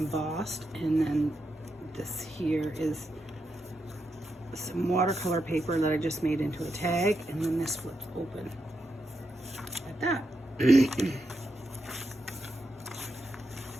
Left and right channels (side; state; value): both; normal; correlation 0.84